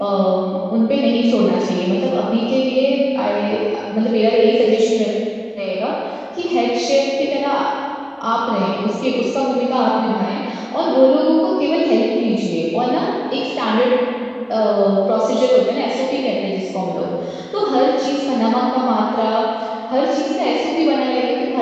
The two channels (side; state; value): both; identical; correlation 1.00